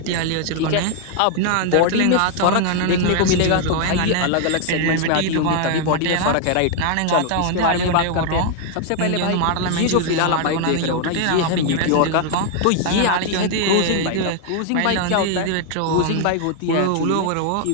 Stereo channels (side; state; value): both; different; correlation 0.00